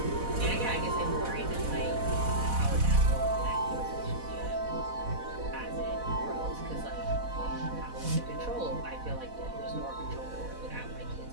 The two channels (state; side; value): late; left; 4.1 ms